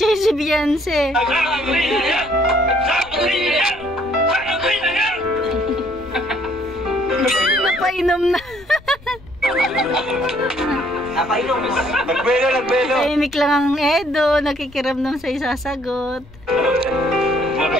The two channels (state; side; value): noise; left; rumble, 22 dB below the sound